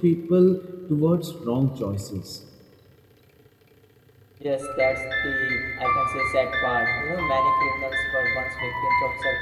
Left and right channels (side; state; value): both; identical; correlation 1.00